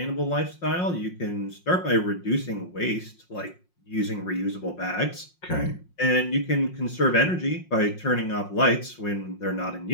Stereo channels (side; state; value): right; late; 5.6 ms